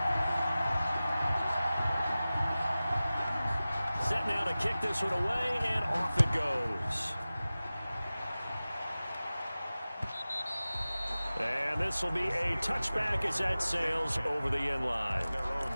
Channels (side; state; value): both; inverted; correlation -0.97